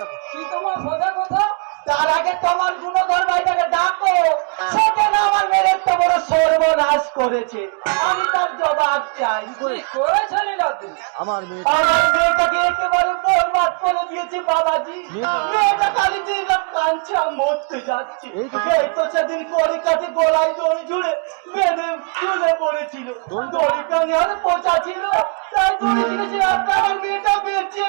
কি তোমার সোজা কথা? তার আগে তোমার গুণধর ভাইটাকে ডাকো, সেখানে আমার মেরে তো বড় সর্বনাশ করেছে, আমি তার জবাব চাই। করেছে আমার মেয়ে আমার মেয়েটাকে একেবারে বরবাদ করে দিয়েছে বাবাজি। মেয়েটা খালি দিন রাত কাঁদছে, আর মরতে যাচ্ছে। এই তো সেদিন কলিকাতে গলায় দড়ি ঝুড়ে বেঁধে তুলে পড়েছিল, দড়িটা নেওয়ার পচা ছিল, তাই দড়ি ঝুড়েছে, আমার মেয়েটা বেঁচে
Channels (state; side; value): quieter; left; 38.3 dB